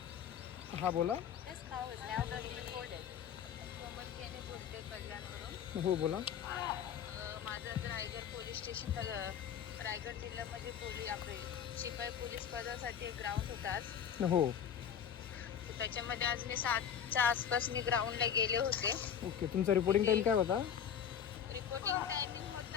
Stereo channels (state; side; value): quieter; right; 8.5 dB